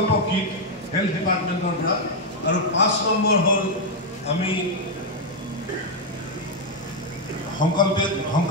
kit health ডিপাৰ্টমেণ্টৰ পৰা, আৰু 5 নম্বৰ হ'ল আমি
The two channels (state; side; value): normal; both; correlation 0.01